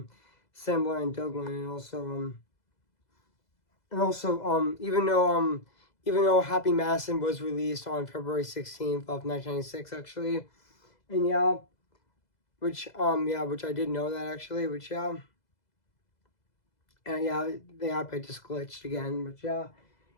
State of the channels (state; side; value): late; right; 2.0 ms